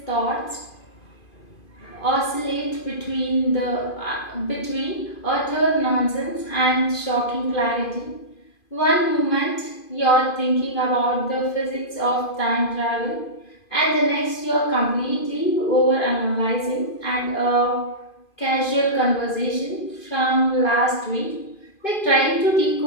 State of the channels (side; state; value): right; late; 2.5 ms